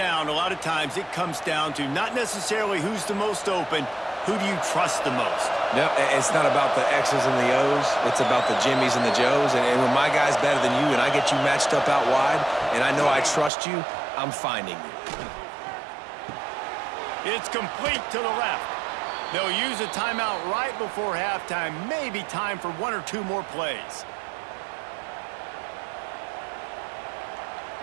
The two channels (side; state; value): left; drops out; at 13.5 s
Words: a lot of times it comes down to not necessarily who's the most open, who do you trust the most? No, it's not about the X's and the O's. It's about the Jimmies and the Joes. And when my guy's better than you and I get you matched up out wide and I know I trust you, I'm finding you. It's complete to the left. They'll use a timeout right before halftime. Maybe time for 1 or 2 more plays.